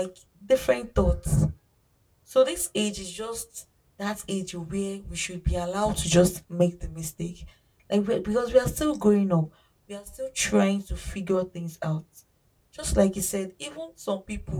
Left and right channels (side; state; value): both; identical; correlation 1.00